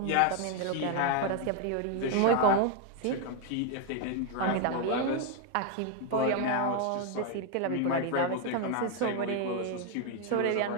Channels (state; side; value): different; both; correlation 0.01